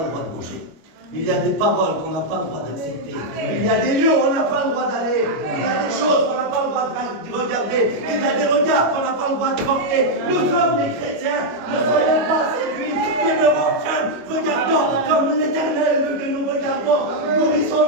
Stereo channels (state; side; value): late; left; 25 ms